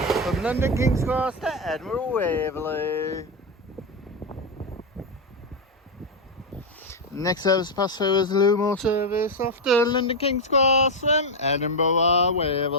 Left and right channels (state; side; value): normal; both; correlation 0.05